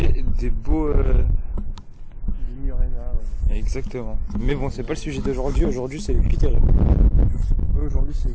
des beaux... Des Murena, ouais. Exactement. Mais bon, c'est pas le sujet d'aujourd'hui. Aujourd'hui, c'est les cutéreux. Aujourd'hui, c'est les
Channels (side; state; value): both; identical; correlation 1.00